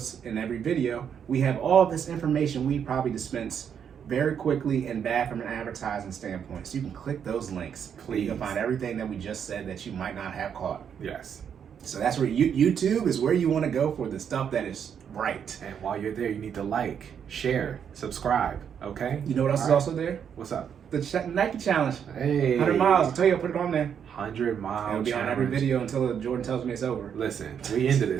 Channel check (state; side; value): quieter; left; 8.0 dB